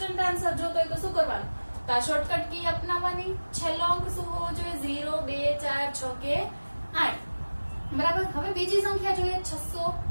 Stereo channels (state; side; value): inverted; both; correlation -1.00